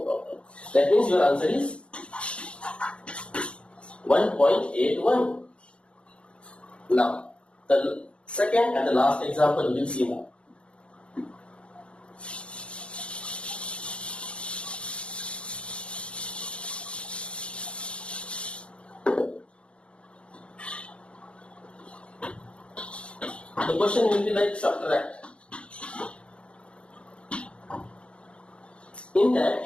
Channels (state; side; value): late; right; 0.058 ms